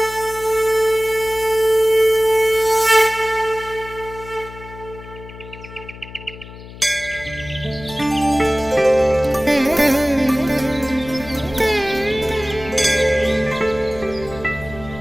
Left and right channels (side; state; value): left; noise; hum, 16 dB below the sound